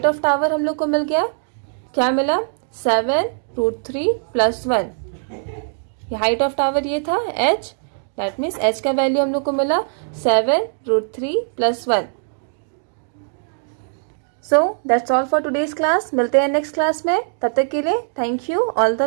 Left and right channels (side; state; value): left; silent; digital silence